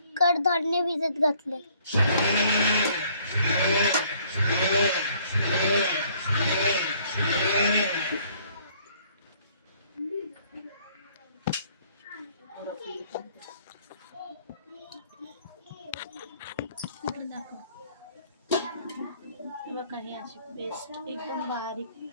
कडधान्य भिजत घातले. बघा, ही अशी पेस्ट एकदम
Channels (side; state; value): both; inverted; correlation -0.61